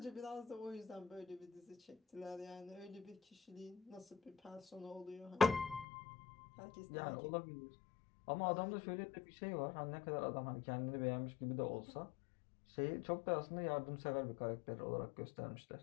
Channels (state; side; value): drops out; right; at 5.9 s